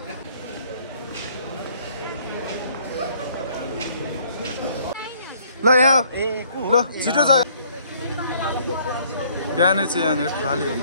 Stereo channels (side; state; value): both; inverted; correlation -0.61